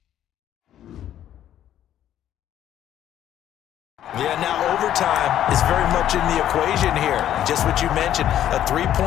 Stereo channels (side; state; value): right; quieter; 11.3 dB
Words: Yeah, now overtime is very much in the equation here. Just what you mentioned, a